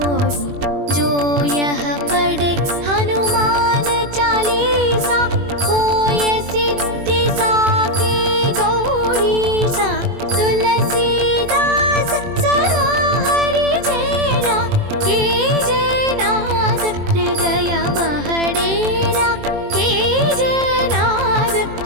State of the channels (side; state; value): left; late; 21 ms